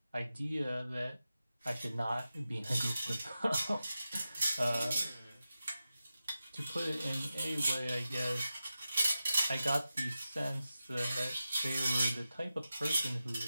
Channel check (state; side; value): inverted; both; correlation -0.92